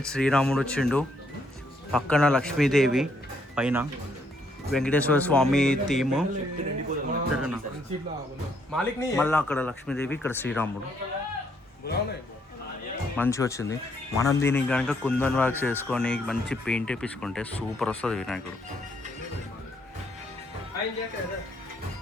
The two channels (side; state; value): both; normal; correlation 0.71